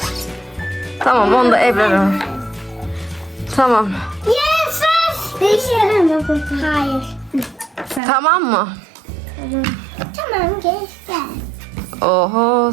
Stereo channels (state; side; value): drops out; left; at 8.0 s